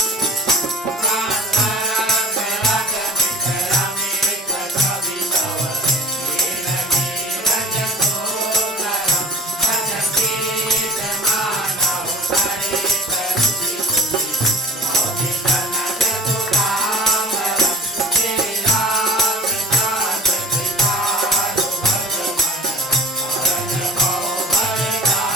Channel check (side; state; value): both; normal; correlation 0.42